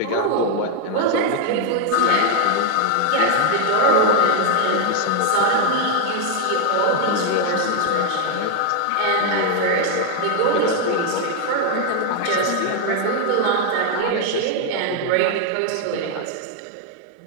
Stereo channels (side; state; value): both; different; correlation 0.00